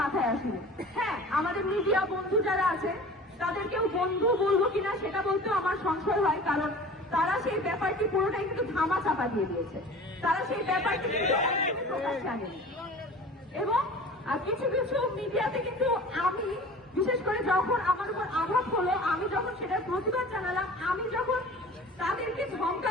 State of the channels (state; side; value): normal; both; correlation 0.41